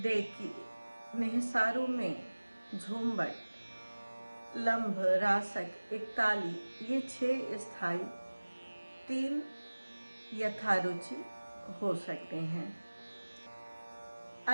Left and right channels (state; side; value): inverted; both; correlation -1.00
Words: देखी, निहसारू में झूमबट, लंब, रासक, एकताली, ये 6 स्थायी, 3 यथारुचि हो सकते हैं।